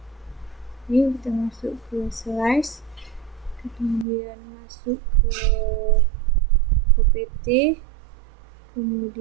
ini, kita masuk ke slice, kemudian masuk ke opt,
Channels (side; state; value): left; drops out; at 4.0 s